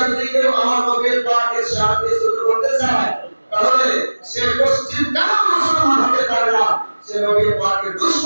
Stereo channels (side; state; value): both; inverted; correlation -1.00